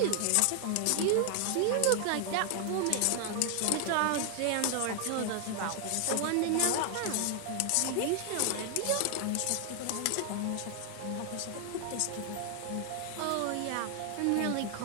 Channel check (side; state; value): both; different; correlation 0.00